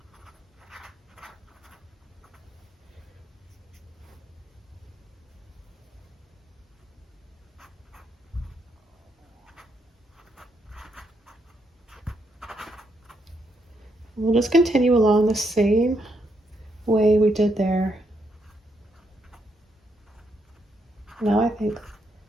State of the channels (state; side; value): normal; both; correlation 0.77